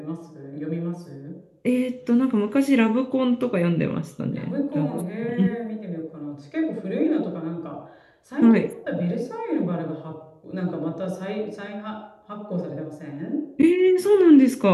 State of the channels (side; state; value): both; identical; correlation 1.00